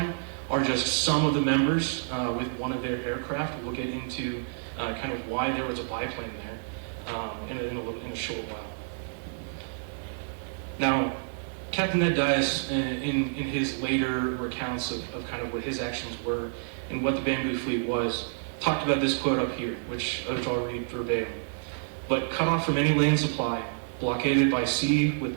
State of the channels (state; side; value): silent; left; digital silence